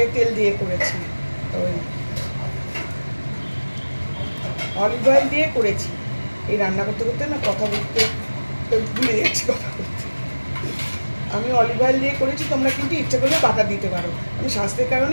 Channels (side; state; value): both; inverted; correlation -1.00